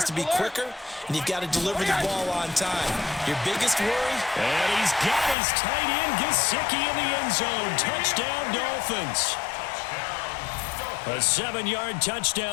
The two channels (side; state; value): right; drops out; at 5.4 s